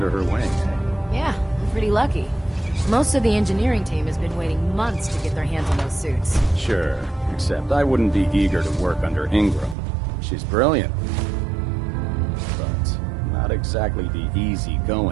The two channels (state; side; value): drops out; left; at 9.8 s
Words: her wing. Yeah, I'm pretty lucky. Most of the engineering team has been waiting months to get their hands on those suits. Sure, except I wouldn't be eager to work under Ingram. She's brilliant, but not exactly the